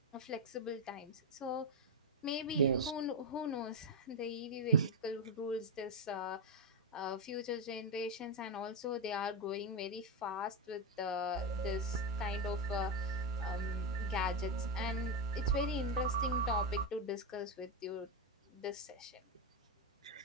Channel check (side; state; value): both; normal; correlation 0.07